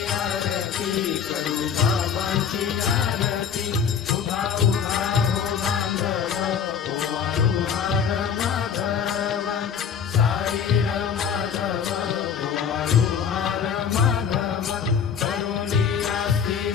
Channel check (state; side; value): quieter; right; 7.3 dB